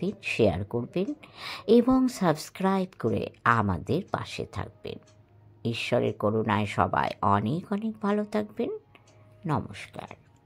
শেয়ার করবেন এবং সাবস্ক্রাইব করে আমাদের পাশে থাকবেন। ঈশ্বরের করুণায় সবাই অনেক অনেক ভালো থাকবেন। নমস্কার।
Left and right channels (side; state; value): both; identical; correlation 1.00